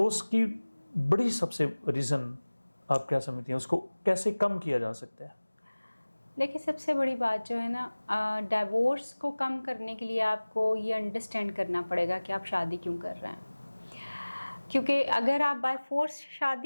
کی بڑی سب سے ریزن آپ کیا سمجھتی ہیں، اس کو کیسے کم کیا جا سکتا ہے؟ دیکھیں سب سے بڑی بات جو ہے نا، ڈائیورس کو کم کرنے کے لیے آپ کو یہ انڈرسٹینڈ کرنا پڑے گا کہ آپ شادی کیوں کر رہے ہیں. کیونکہ اگر آپ بائی فورس،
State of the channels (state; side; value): inverted; both; correlation -1.00